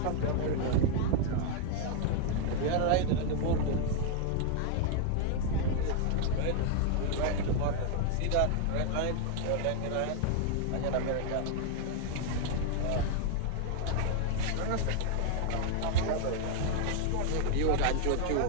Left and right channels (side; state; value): both; different; correlation 0.00